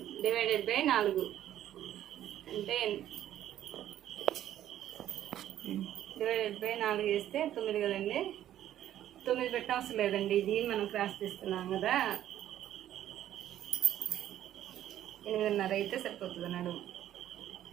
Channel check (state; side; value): quieter; left; 11.9 dB